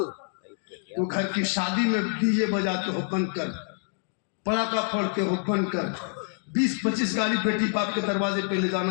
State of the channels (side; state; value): right; silent; 55 dB below the other